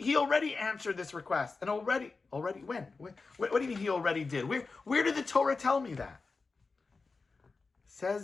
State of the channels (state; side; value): quieter; right; 4.2 dB